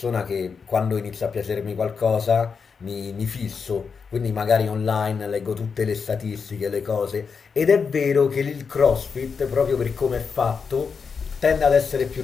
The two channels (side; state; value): right; quieter; 5.6 dB